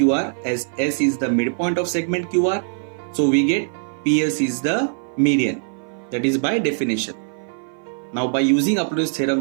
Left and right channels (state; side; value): silent; left; 56 dB below the other